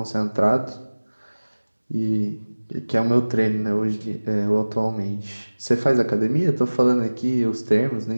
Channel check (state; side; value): inverted; both; correlation -1.00